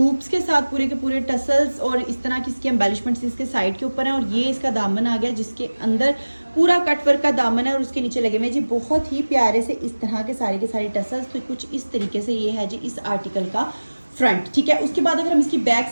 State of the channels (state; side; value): inverted; both; correlation -1.00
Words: के साथ पूरे के पूरे टसल्स और इस तरह की इसकी एम्बेलिशमेंट्स इसके साइड के ऊपर हैं। और ये इसका दामन आ गया जिसके अंदर पूरा कट वर्क का दामन है और उसके नीचे लगे हुए जी बहुत ही प्यारे से इस तरह के सारे टसल्स। तो कुछ इस तरीके से ये है जी इस आर्टिकल का फ्रंट, ठीक है। उसके बाद अगर हम इसकी बैक